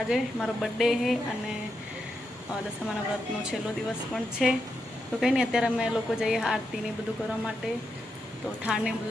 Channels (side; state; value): both; normal; correlation 0.84